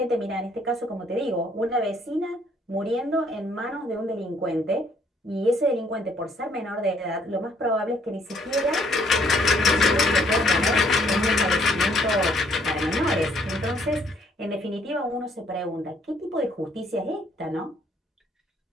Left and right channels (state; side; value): normal; both; correlation 0.65